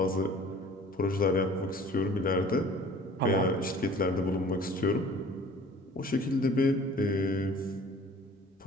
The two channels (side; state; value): both; normal; correlation 0.48